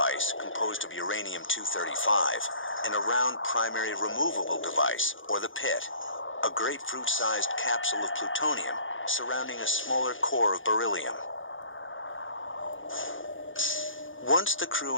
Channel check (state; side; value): late; right; 0.57 ms